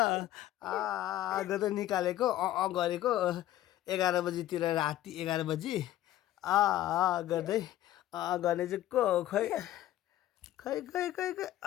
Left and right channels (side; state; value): right; quieter; 13.6 dB